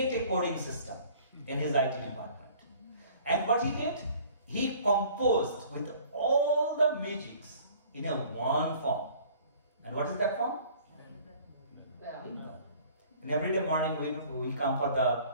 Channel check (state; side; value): inverted; both; correlation -0.52